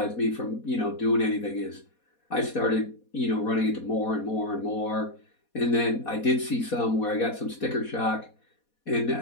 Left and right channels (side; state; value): right; late; 4.2 ms